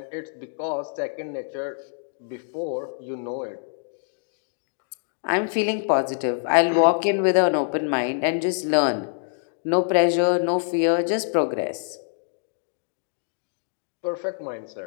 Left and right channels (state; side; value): silent; right; digital silence